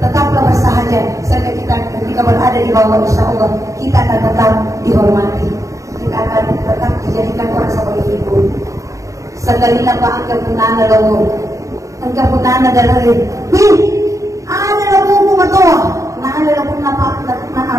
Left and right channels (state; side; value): late; left; 0.16 ms